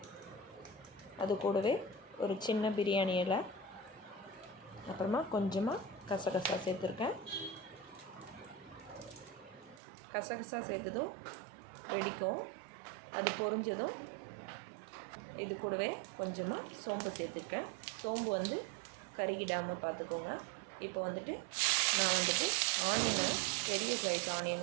அது கூடவே ஒரு சின்ன பிரியாணி இலை, அப்புறமா கொஞ்சமாக கசகசா சேர்த்துருக்கேன். கசகசா சேர்த்ததும் வெடிக்கும். அது பொரிஞ்சதும் இது கூடவே கொஞ்சமாக சோம்பு சேர்த்துருக்கேன். சோம்பு வந்து கருகிடாமல் பார்த்துக்கோங்க. இப்போ வந்துட்டு நான் ஆனியனை, பெரிய சைஸ்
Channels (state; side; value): drops out; left; at 9.8 s